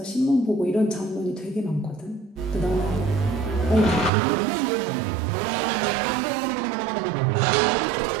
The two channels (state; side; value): drops out; left; at 4.1 s